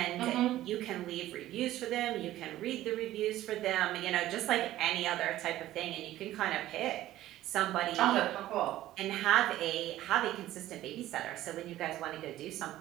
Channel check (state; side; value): quieter; left; 14.5 dB